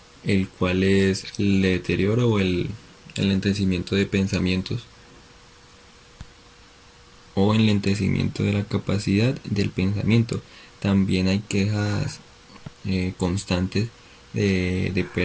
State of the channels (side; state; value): both; identical; correlation 1.00